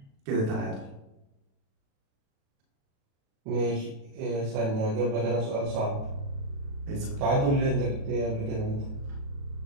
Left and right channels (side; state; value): left; late; 36 ms